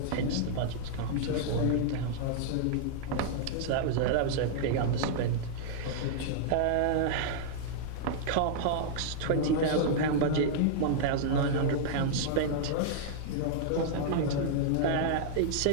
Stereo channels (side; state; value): both; different; correlation -0.01